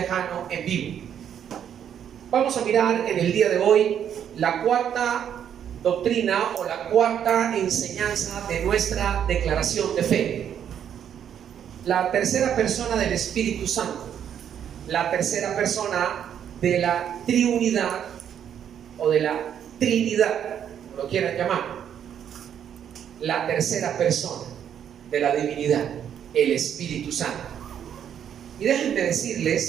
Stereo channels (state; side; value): quieter; left; 9.1 dB